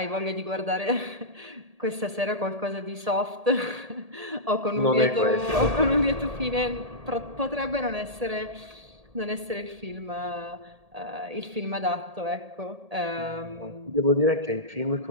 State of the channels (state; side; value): late; left; 1.8 ms